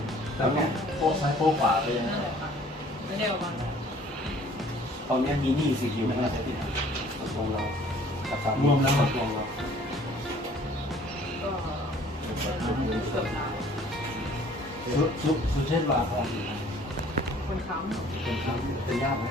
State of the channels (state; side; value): normal; both; correlation 0.54